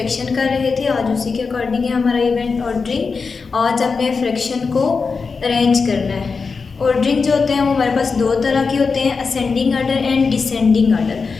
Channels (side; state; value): right; quieter; 4.8 dB